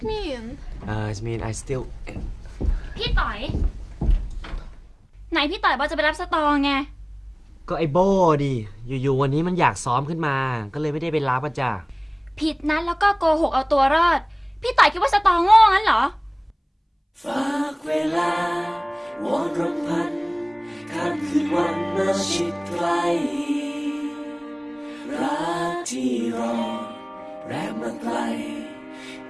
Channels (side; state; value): both; identical; correlation 1.00